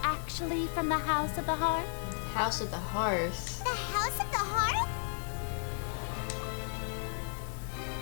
actually from the House of the Hearth? House of the Hearth. The House of the Hearth?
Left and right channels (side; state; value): right; silent; 55 dB below the other